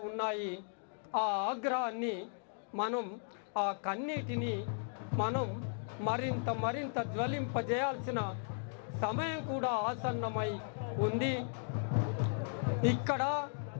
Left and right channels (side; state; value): right; silent; digital silence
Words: ఉన్నాయి. ఆ ఆగ్రహాన్ని మనం ఆ కన్నీటిని మనం మరింత జ్వలింపజేయాల్సిన సమయం కూడా ఆసన్నమై ఉంది. ఇక్కడ